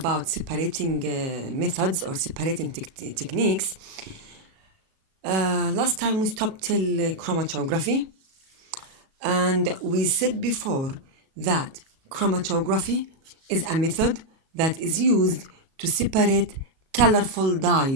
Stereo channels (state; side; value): late; left; 37 ms